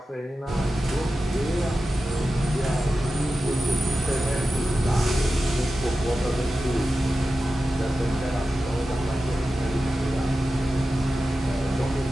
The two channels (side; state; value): both; normal; correlation 0.93